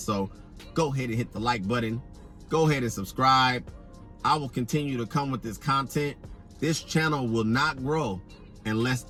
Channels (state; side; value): identical; both; correlation 1.00